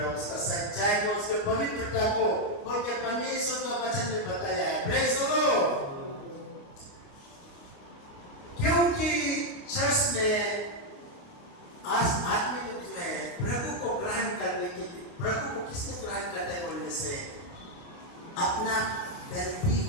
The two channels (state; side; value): late; right; 29 ms